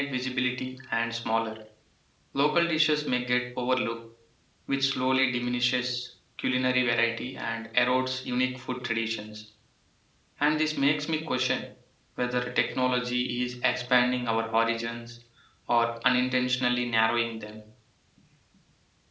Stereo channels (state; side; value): identical; both; correlation 1.00